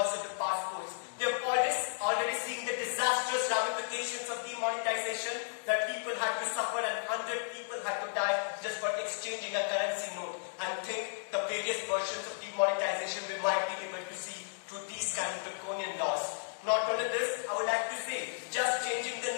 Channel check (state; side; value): silent; right; digital silence